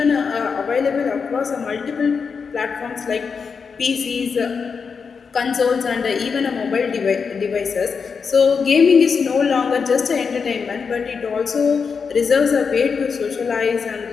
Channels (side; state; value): right; quieter; 5.6 dB